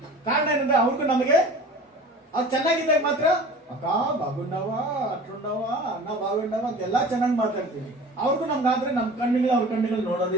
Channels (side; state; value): both; normal; correlation 0.41